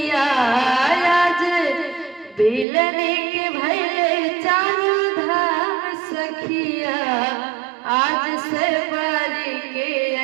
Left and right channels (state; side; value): drops out; left; at 2.7 s